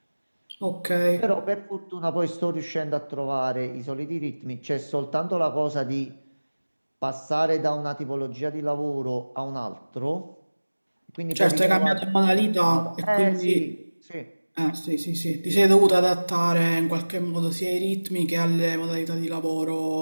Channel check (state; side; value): inverted; both; correlation -1.00